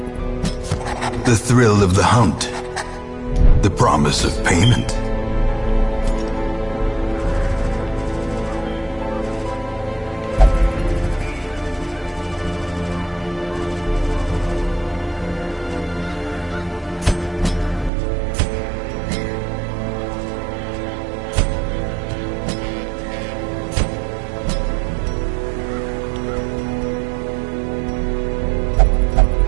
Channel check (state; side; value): drops out; left; at 17.9 s